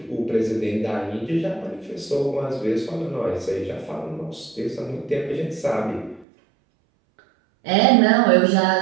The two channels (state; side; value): drops out; left; at 6.2 s